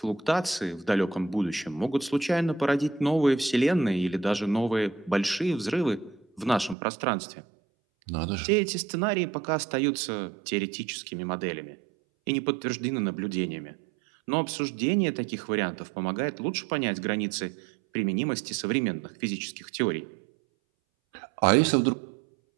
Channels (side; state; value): left; drops out; at 6.8 s